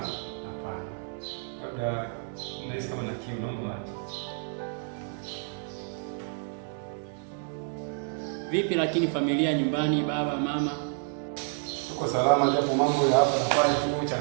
hapana. Labda nahisi kama na kiu naomba maji. Vipi lakini familia nyumbani, baba, mama? Tuko salama, japo mambo ya hapa na pale tu,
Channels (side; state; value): left; silent; 55 dB below the other